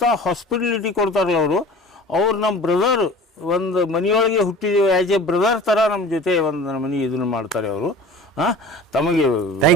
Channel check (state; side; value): normal; both; correlation 0.41